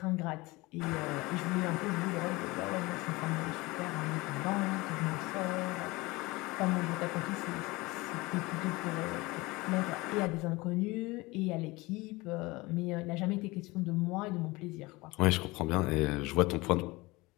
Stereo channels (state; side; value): quieter; right; 22.4 dB